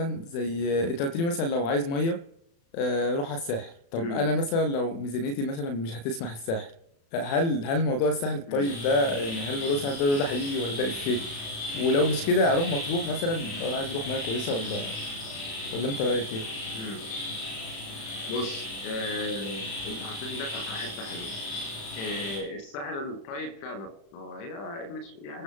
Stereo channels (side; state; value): right; late; 36 ms